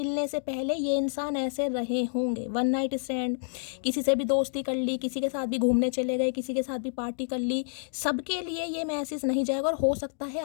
से पहले ये इंसान ऐसे रहे होंगे। वन नाइट स्टैंड, किसी से भी दोस्ती कर ली, किसी के साथ भी घूमने चले गए, किसी के साथ भी पार्टी कर ली, सबके लिए ये मैसेज नहीं जाएगा। और हो सकता है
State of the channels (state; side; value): silent; right; digital silence